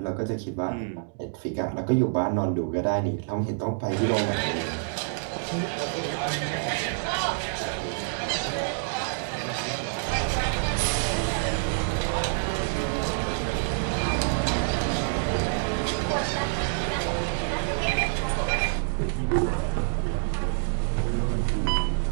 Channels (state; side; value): silent; left; digital silence